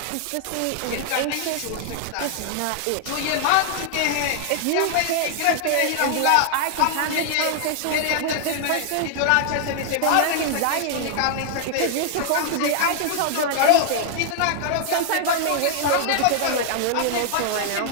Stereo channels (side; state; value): both; different; correlation 0.00